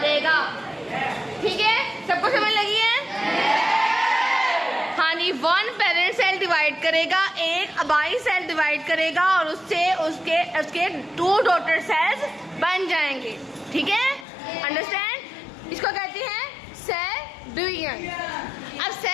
देगा। ठीक है, सबको समझ लगी है? हाँ जी, वन पेरेंट सेल डिवाइड करेगा, एक अबाई सेल डिवाइड करेगा और उससे उसके टू डॉटर सेल्स बन जाएंगे। ठीक है, अंडरस्टैंड? इसको कहते हैं सेल डिवीजन। अब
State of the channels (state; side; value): drops out; right; at 14.2 s